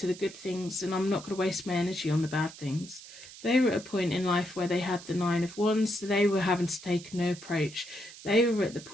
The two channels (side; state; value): right; noise; hiss, 16 dB below the sound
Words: the good things and I'm not going to waste my energy on the bad things. They were at a point in life where they had the Nine of Wands, so they were having to take a new approach. They were at the